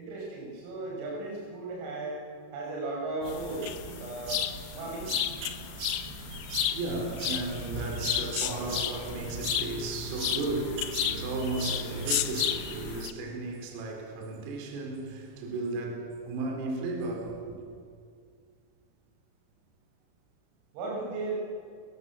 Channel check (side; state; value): left; late; 35 ms